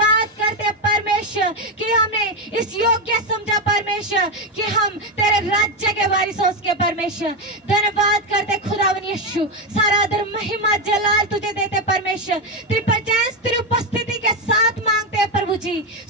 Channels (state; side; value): normal; both; correlation 0.09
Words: करते परमेश्वर कि हमें इस योग्य समझा परमेश्वर कि हम तेरे राज्य के वारिस हो उसके परमेश्वर। धन्यवाद करते खुदावन यीशु, सारा आदर महिमा जलाल तुझे देते परमेश्वर। तेरी प्रेजेंस तेरी उपस्थिति के साथ मांगते हैं प्रभु जी,